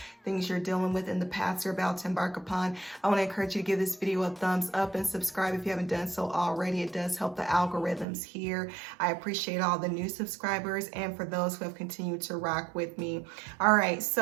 things you're dealing with, and the paths you're about to embark upon. I want to encourage you to give this video a thumbs up and subscribe if you haven't done so already. It does help the algorithms here. I appreciate all the new subscribers and for those who have continued to rock with me. All right,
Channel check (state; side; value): drops out; left; at 8.1 s